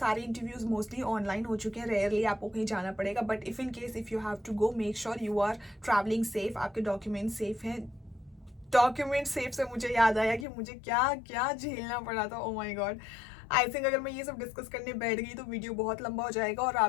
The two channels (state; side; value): drops out; right; at 10.5 s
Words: इंटरव्यूज मोस्टली ऑनलाइन हो चुके हैं, रेयरली आपको कहीं जाना पड़ेगा, बट इफ इन केस इफ यू हैव टू गो मेक श्योर यू आर ट्रैवलिंग सेफ, आपके डॉक्यूमेंट सेफ हैं। डॉक्यूमेंट सेफ से मुझे याद आया कि मुझे क्या क्या झेलना पड़ा था। ओ माय गॉड, आई थिंक अगर मैं ये सब डिस्कस करने बैठ गई तो वीडियो बहुत लंबा हो जाएगा और